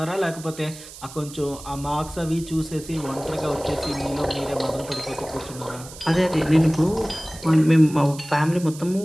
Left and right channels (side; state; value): right; noise; hiss, 16 dB below the sound